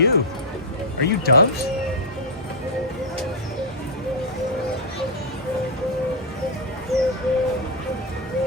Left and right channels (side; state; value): both; normal; correlation -0.03